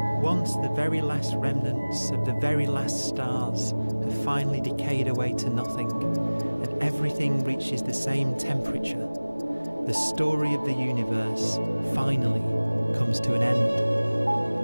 Once the very last remnants of the very last stars have finally decayed away to nothing, and everything reaches the same temperature, the story of the universe finally comes to an end.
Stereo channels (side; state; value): both; inverted; correlation -1.00